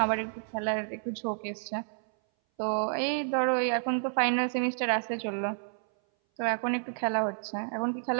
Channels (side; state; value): left; silent; 58 dB below the other